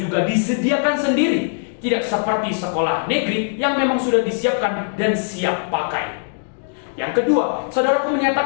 disediakan sendiri, tidak seperti sekolah negeri yang memang sudah disiapkan dan siap pakai. Yang kedua, saudaraku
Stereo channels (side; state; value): right; silent; digital silence